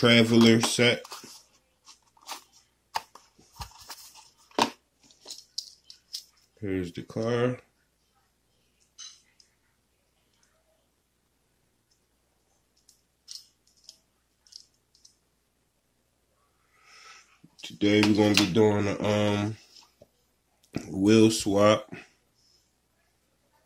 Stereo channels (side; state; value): both; identical; correlation 1.00